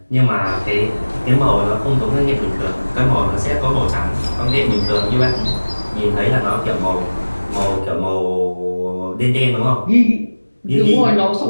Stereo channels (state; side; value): inverted; both; correlation -1.00